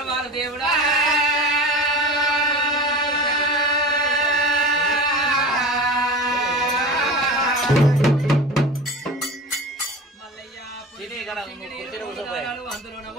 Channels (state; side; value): normal; both; correlation 0.34